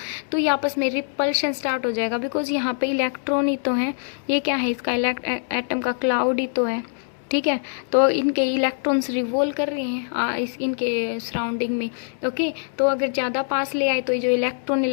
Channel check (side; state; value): right; silent; digital silence